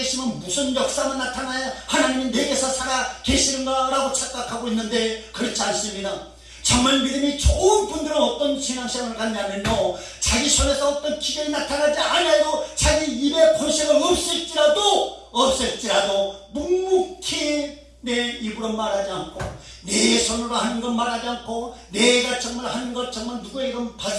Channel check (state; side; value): identical; both; correlation 1.00